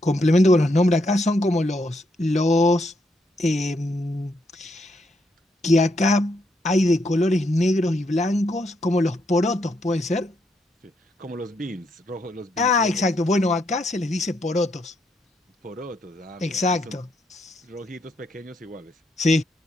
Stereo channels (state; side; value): normal; both; correlation 0.77